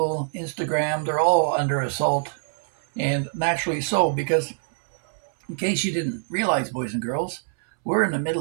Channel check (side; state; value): left; silent; 62 dB below the other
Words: Instagram, they're all under assault. And naturally so, because in case you didn't realize, boys and girls, we're in the